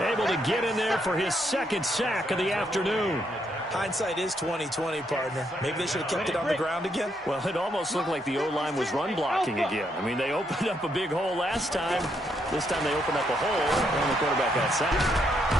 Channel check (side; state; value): both; normal; correlation 0.76